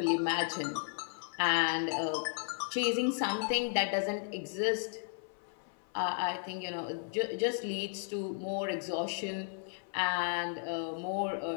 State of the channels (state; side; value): silent; right; 55 dB below the other